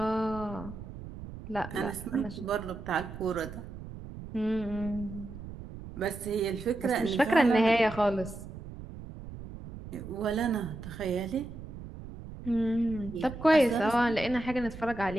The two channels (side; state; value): right; noise; rumble, 12 dB below the sound